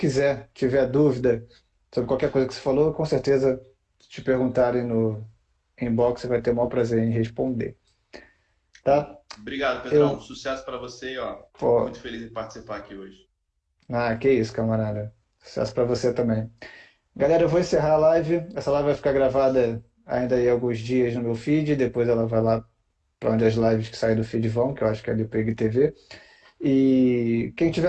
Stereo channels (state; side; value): identical; both; correlation 1.00